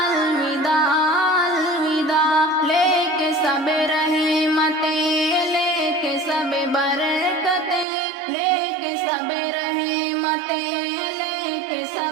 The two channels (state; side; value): drops out; left; at 7.9 s